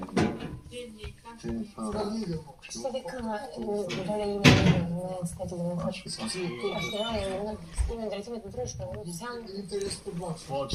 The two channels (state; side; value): identical; both; correlation 1.00